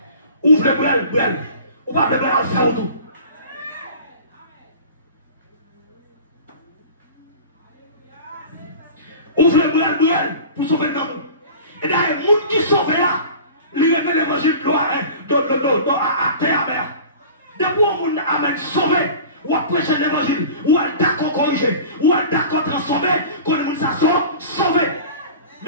Ouvre le brel, ou pas le brel à faire autour. Ouvre le brel pour sauver l'homme. Et d'ailleurs, les gens qui sauvent là, ils remettent l'évangile à terre amère. Depuis qu'on a sauvé, ou à prêcher l'évangile, ou à d'accord corriger, ou à d'accord transformer, qu'on nous a sauvé.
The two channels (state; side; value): inverted; both; correlation -0.39